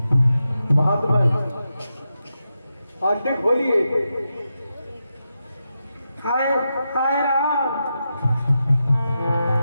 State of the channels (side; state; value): both; inverted; correlation -0.88